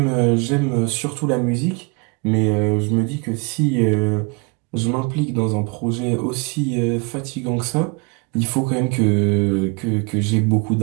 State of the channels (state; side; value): quieter; left; 31.0 dB